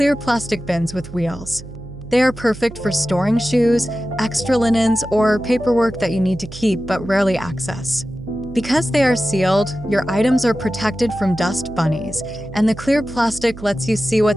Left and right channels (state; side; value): noise; right; hum, 14 dB below the sound